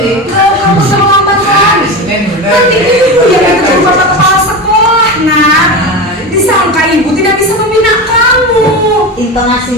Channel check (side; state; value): both; normal; correlation 0.23